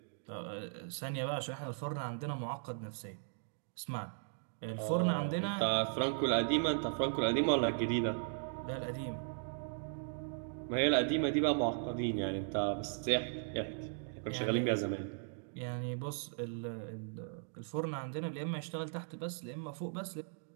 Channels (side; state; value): left; silent; digital silence